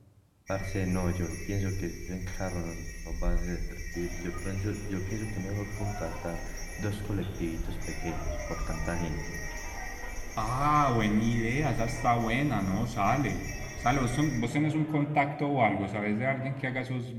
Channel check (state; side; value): identical; both; correlation 1.00